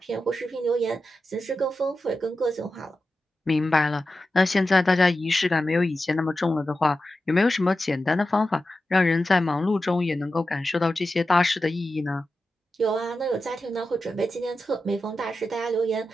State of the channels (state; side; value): normal; both; correlation 0.92